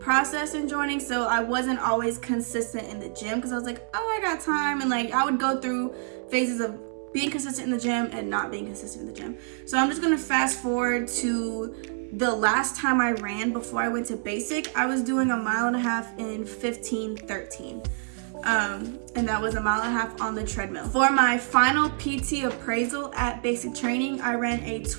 in joining, so I wasn't always consistent in the gym, because I was like, oh, I got time, and like I would go through phases of being consistent in the gym and not being consistent in the gym. So I'm just gonna fast forward to the last time I ran before I went to basic. I was doing a mile and a half in 15:13. And that was a mile and a half on the treadmill. For my final PT appraisal at basic training, I ran a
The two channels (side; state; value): left; silent; 58 dB below the other